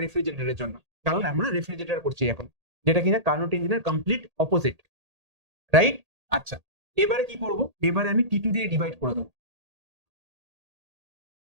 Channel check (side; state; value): left; late; 1.8 ms